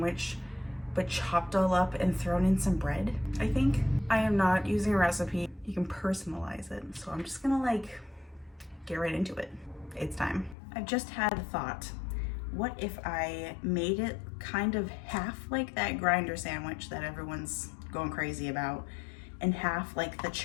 but chopped all up and thrown in some bread, I think. I am not using a recipe. You can personalize it. So I'm just gonna like get right into it. It's time. I've just had a thought. What if I made it kind of half like that grinder sandwich that everyone's going crazy about, and half like the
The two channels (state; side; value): drops out; right; at 10.6 s